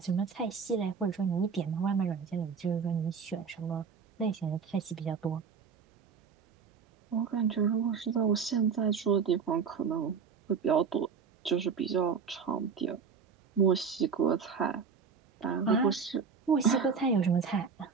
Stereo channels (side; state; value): left; quieter; 6.0 dB